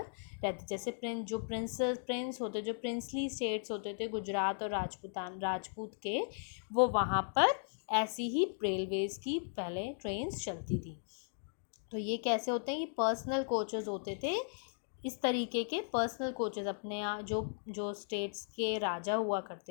रहते. जैसे प्रिंस होते, जो प्रिंसली स्टेट्स होते थे गुजरात और राजपूत के, वो वहाँ पर ऐसी ही रेलवेज़ की पहले ट्रेन्स चलती थी. तो ये कैसे होते हैं? ये पर्सनल कोचेस होते थे. इस तरीके के पर्सनल कोचेस अपने यहाँ जो स्टेट्स के राजा हुआ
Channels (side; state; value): right; silent; digital silence